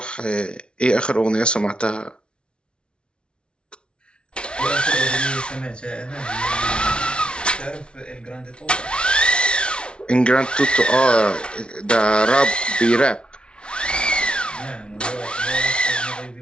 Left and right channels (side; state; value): right; late; 0.057 ms